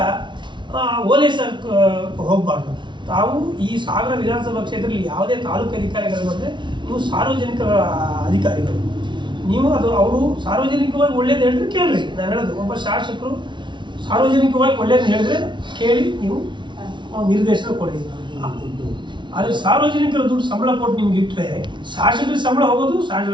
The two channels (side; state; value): left; late; 0.23 ms